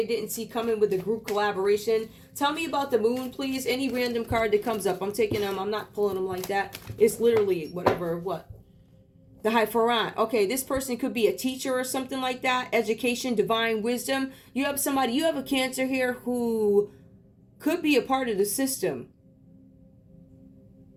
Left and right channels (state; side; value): identical; both; correlation 1.00